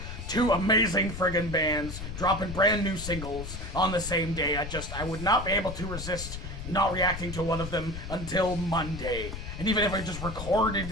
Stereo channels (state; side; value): noise; left; rumble, 8 dB below the sound